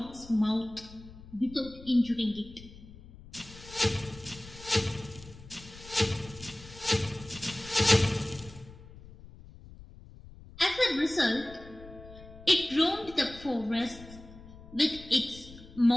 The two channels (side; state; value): left; noise; rumble, 18 dB below the sound